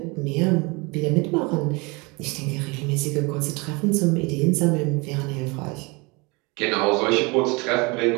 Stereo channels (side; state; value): left; quieter; 27.2 dB